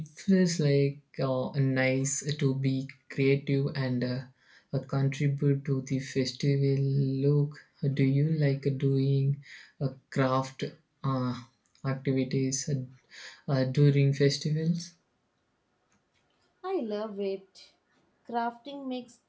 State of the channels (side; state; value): both; identical; correlation 1.00